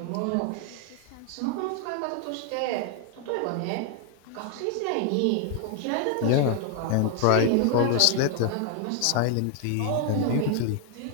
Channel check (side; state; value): both; different; correlation 0.00